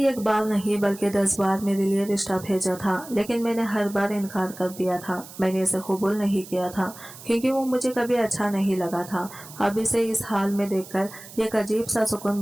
एक बार नहीं बल्कि 10 बार मेरे लिए रिश्ता भेजा था, लेकिन मैंने हर बार इनकार कर दिया था। मैंने इसे कबूल नहीं किया था क्योंकि वो मुझे कभी अच्छा नहीं लगा था। अब इसे इस हाल में देखकर एक अजीब सा सुकून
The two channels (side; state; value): right; noise; hiss, 17 dB below the sound